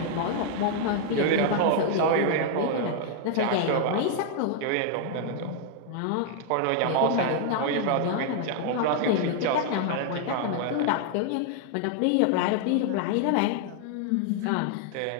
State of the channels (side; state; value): both; different; correlation 0.00